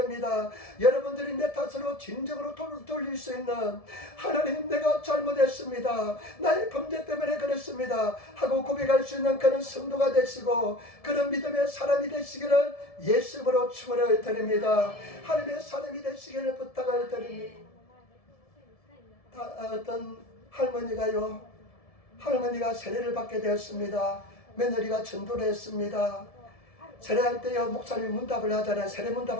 여러분들이 내 탓으로 진정으로 돌릴 수 있는, 하나님 내가 잘못했습니다, 나의 범죄 때문에 그렇습니다 하고 고백할 수 있는 그런 성도가 되시고 그런 믿음의 사람이 되시기를 예수님으로 축원을 드립니다. 하나님의 사람이 되시기를 부탁을 드립니다. 어떤 할머니가 세례를 받게 되었습니다. 며느리가 전도를 했습니다. 세례할 때요, 목사님이 문답을 하잖아요. 세례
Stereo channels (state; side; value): late; right; 1.7 ms